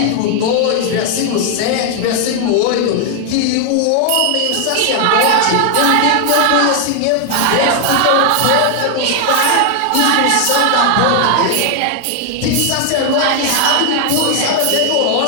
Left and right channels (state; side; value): different; both; correlation 0.00